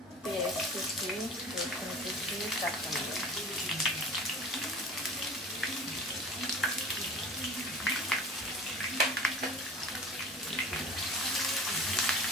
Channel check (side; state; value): both; normal; correlation 0.41